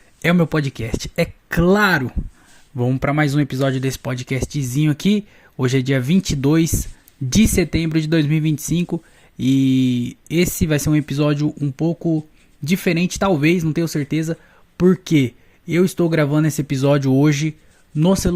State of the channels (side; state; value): both; identical; correlation 1.00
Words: é o meu podcast. É claro! Vamos para mais um episódio desse podcastzinho aqui. Hoje é dia 22 de setembro de 2025 e esse vai ser um episódio um pouco diferente, talvez, não tenho certeza, porque eu estou gravando esse episódio hoje no